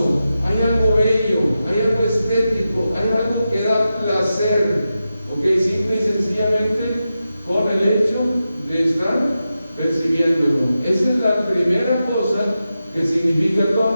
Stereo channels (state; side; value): inverted; both; correlation -0.90